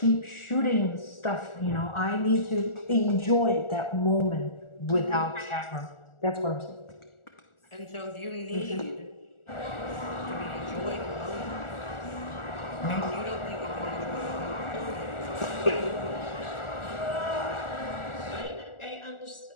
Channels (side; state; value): right; late; 1.4 ms